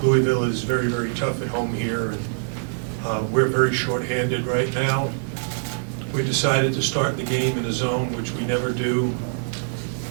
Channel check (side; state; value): left; silent; digital silence